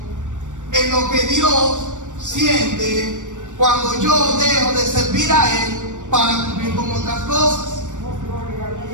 en lo que Dios siente cuando yo dejo de servir a Él para cumplir con otras cosas.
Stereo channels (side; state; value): left; late; 0.86 ms